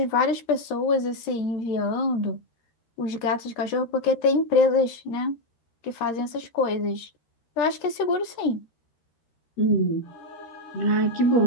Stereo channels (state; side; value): late; right; 13 ms